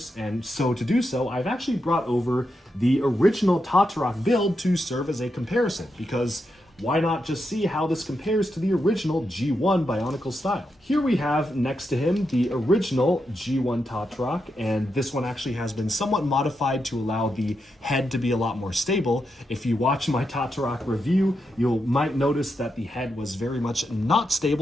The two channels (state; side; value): normal; both; correlation 0.85